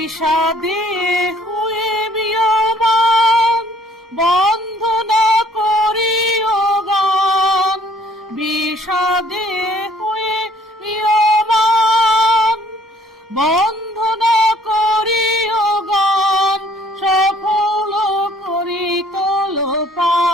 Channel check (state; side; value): normal; both; correlation 0.60